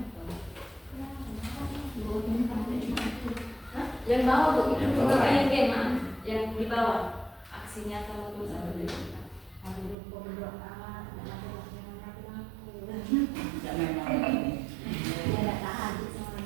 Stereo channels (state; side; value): drops out; left; at 10.0 s